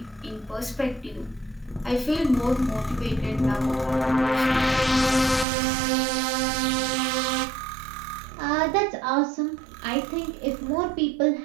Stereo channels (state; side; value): drops out; left; at 5.5 s